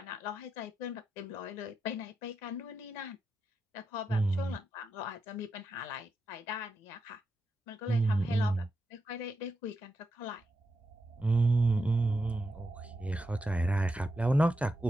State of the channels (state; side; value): normal; both; correlation 0.86